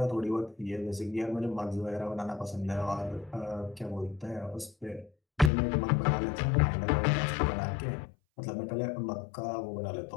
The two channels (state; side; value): drops out; right; at 5.5 s